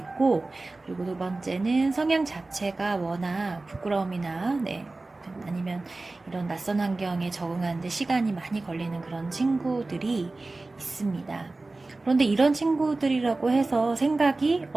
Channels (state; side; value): quieter; left; 3.2 dB